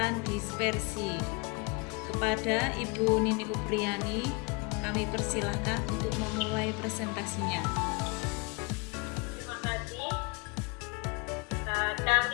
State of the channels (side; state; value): right; quieter; 29.1 dB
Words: dispersi. Kepada Ibu Nini Upriani, kami persilahkan untuk memulai presentasinya. Terima kasih.